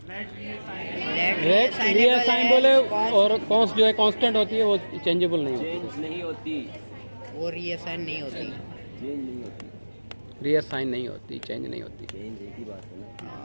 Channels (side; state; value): both; inverted; correlation -1.00